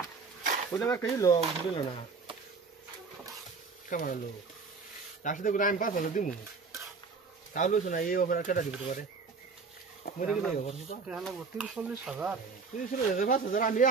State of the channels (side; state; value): left; quieter; 4.7 dB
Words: ওটা আমার কই লো বুঝলো না কেমন লো তার সাথে করে আমি 5,000 দিমু তাহলে শোনা এই অফার কেটে দিতে পারে মরে গেলে অফার টাকা লাগবে 30-40,000